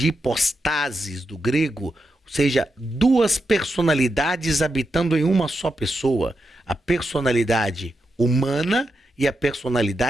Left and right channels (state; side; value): normal; both; correlation 0.86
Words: hipostasis, do grego, ou seja, duas personalidades habitando em uma só pessoa. A personalidade humana e a